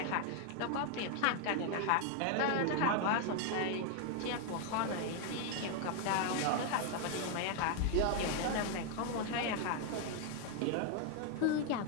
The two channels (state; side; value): different; both; correlation 0.00